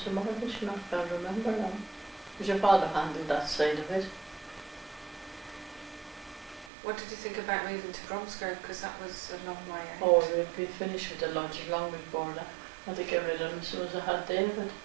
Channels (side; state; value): left; drops out; at 6.7 s